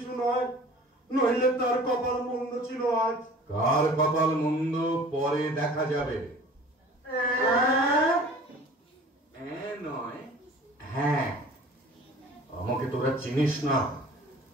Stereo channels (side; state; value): both; normal; correlation 0.46